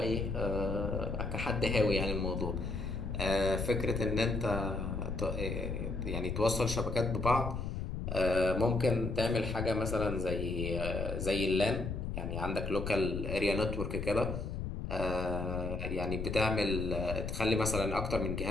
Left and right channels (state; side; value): noise; left; rumble, 4 dB below the sound